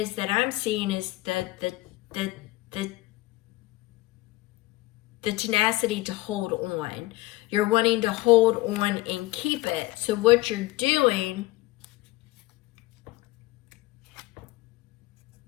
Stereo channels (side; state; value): right; quieter; 19.1 dB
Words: that I'm seeing is that the tenacity to hold on. You're wanting to hold on and keep it. So what you're doing,